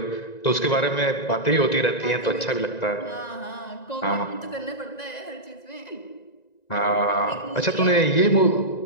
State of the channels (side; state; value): right; late; 1.9 ms